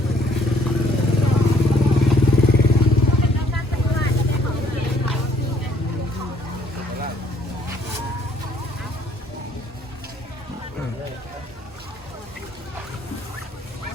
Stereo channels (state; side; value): normal; both; correlation 0.63